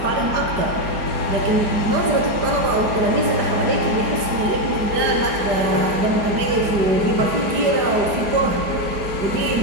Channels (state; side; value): late; left; 5.0 ms